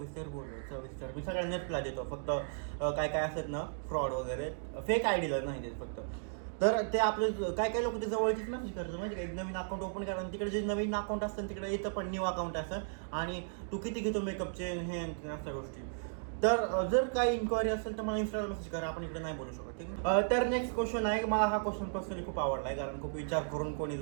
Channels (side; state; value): left; silent; digital silence